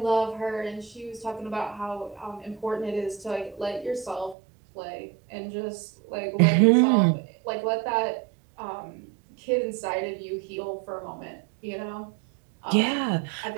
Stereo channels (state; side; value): drops out; left; at 4.4 s